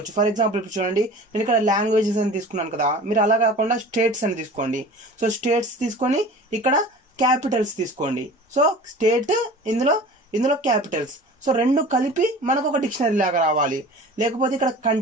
ఫర్ ఎగ్జాంపుల్ ఇప్పుడు చూడండి, నేను ఇక్కడ లాంగ్వేజెస్ అని తీసుకున్నాను కదా, మీరు అలా కాకుండా స్టేట్స్ అని తీసుకోండి. సో స్టేట్స్ తీసుకొని ఇక్కడ క్యాపిటల్స్ తీసుకోండి. సో స్టేట్, ఇందులో క్యాపిటల్స్. సో రెండు కలిపి మనకు ఒక డిక్షనరీ లాగా రావాలి. లేకపోతే ఇక్కడ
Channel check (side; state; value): both; normal; correlation 0.40